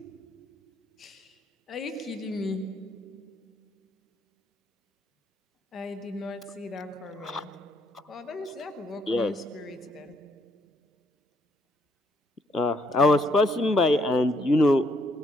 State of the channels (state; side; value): normal; both; correlation 0.72